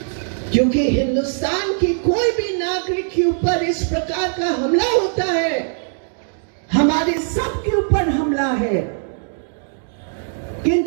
क्योंकि हिंदुस्तान की कोई भी नागरिक के ऊपर इस प्रकार का हमला होता है, हमारे सब के ऊपर हमला है।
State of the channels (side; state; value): left; silent; 65 dB below the other